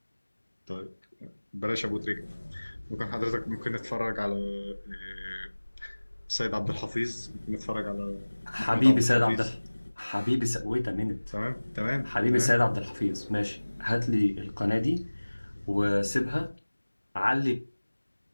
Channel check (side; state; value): both; inverted; correlation -1.00